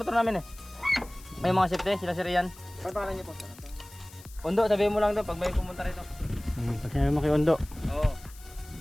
motor namin eh. May mga safety, sila si Rian. Ano pangalan niyo po? Undo, sabihin mo lang doon pag may pumunta rito. Pag sinabi mo kay Ondo. Oo.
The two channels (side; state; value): left; noise; hiss, 21 dB below the sound